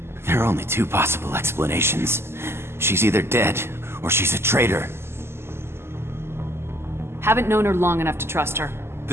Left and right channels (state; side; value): late; left; 0.12 ms